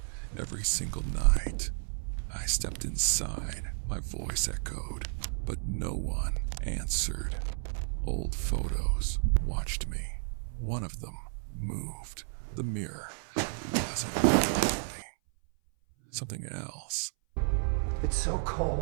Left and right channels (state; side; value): silent; left; 56 dB below the other